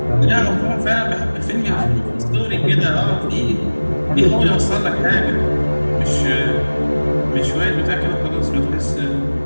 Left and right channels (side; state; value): both; inverted; correlation -1.00